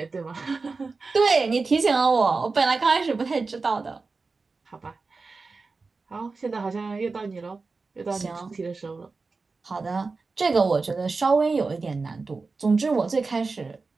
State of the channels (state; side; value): quieter; left; 4.1 dB